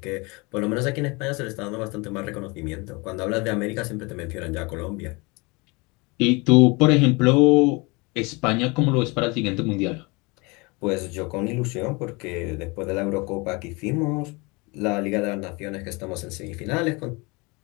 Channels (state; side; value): quieter; right; 26.9 dB